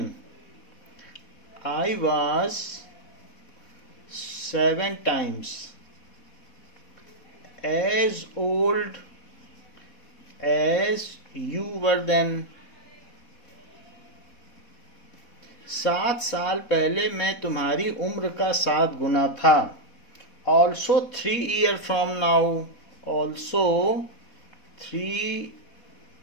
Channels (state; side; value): late; right; 4.1 ms